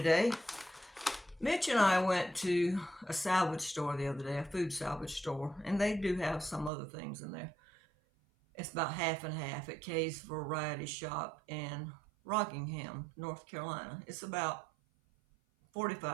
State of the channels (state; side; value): drops out; left; at 6.7 s